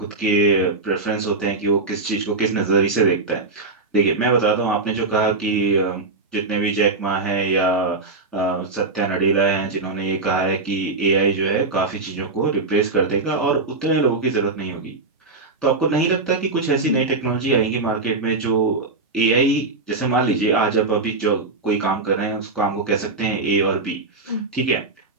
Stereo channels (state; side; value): quieter; left; 3.6 dB